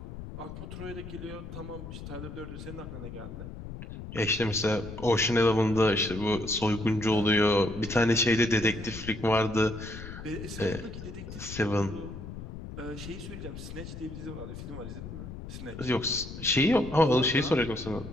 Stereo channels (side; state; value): left; noise; rumble, 11 dB below the sound